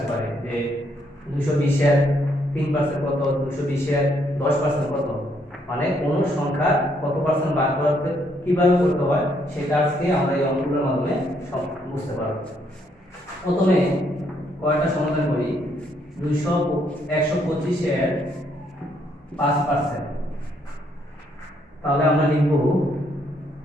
পারে যে 220 এর 3% কত, 220 এর 10% কত, মানে কোন সংখ্যার কত পার্সেন্ট বার করতে কিভাবে করতে হয় সেটা আজকে আমরা এই অঙ্কগুলোর মাধ্যমে বুঝতে পারব। প্রথমে কয়টা সমাধান করি। 125 এর 5%, তাহলে আমরা লিখব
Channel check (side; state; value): both; normal; correlation 0.71